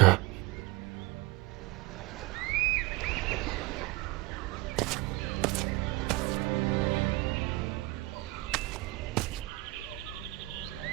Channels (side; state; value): left; quieter; 20.9 dB